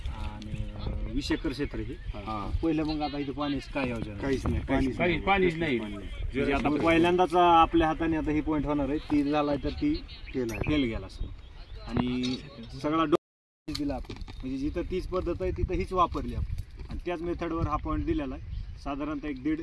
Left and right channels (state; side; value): identical; both; correlation 1.00